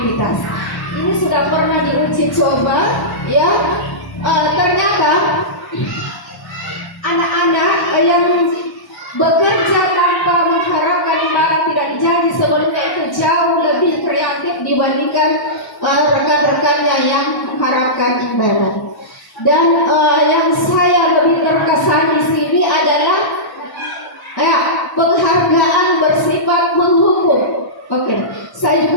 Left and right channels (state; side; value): late; right; 1.1 ms